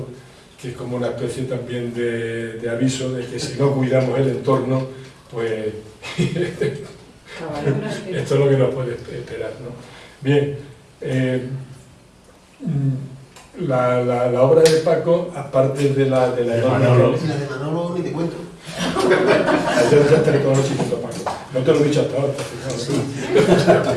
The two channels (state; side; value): identical; both; correlation 1.00